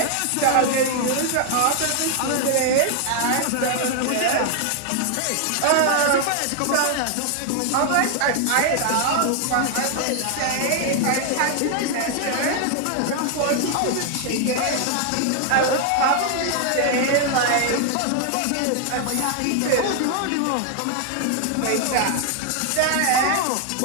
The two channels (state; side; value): different; both; correlation 0.00